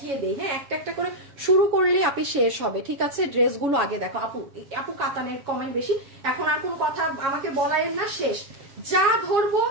দেই। হ্যাঁ একটা একটা করে শুরু করলেই আপনি শেষ হবে। ঠিক আছে, ড্রেসগুলো আগে দেখো আপু। আপু কাতানের কমেন্ট বেশি, এখন আর কোন কথা আমাকে বলায়েন না, শেষ। যা ধরবো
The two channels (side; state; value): left; late; 7.2 ms